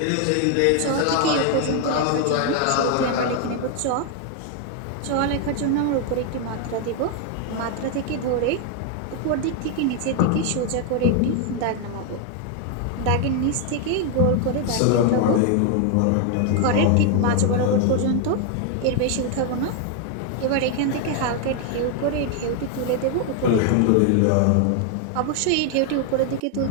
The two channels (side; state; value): both; different; correlation 0.00